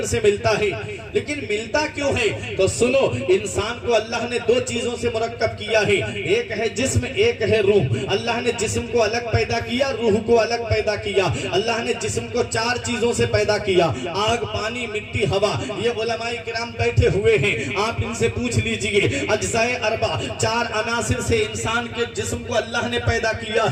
سے ملتا ہے، لیکن ملتا کیوں ہے؟ تو سنو، انسان کو اللہ نے دو چیزوں سے مرکب کیا ہے، ایک ہے جسم، ایک ہے روح۔ اللہ نے جسم کو الگ پیدا کیا، روح کو الگ پیدا کیا۔ اللہ نے جسم کو چار چیزوں سے پیدا کیا، آگ، پانی، مٹی، ہوا۔ یہ علماء کرام بیٹھے ہوئے ہیں، آپ ان سے پوچھ لیجئے، اجزاء اربع، چار عناصر سے انسان کے جسم کو اللہ نے پیدا کیا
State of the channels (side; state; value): both; identical; correlation 1.00